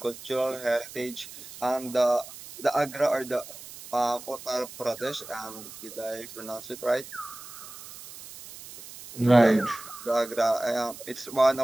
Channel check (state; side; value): noise; right; hiss, 15 dB below the sound